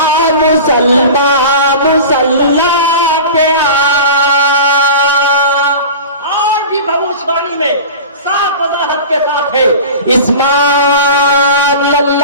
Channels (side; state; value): both; inverted; correlation -0.34